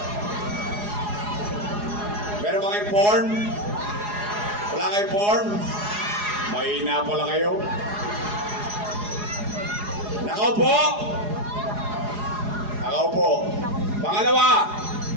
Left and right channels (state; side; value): late; left; 4.8 ms